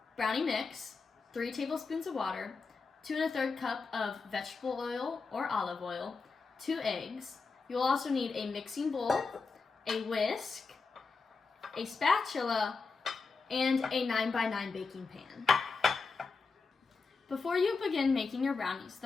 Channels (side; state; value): right; quieter; 4.6 dB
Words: Brownie mix, 3 tablespoons of water, 2 1/3 cup of vegetable oil or olive oil, 2 eggs. You will also need a mixing bowl, a whisk, a spatula, and a 9x9 baking pan. Before you begin making your brownies,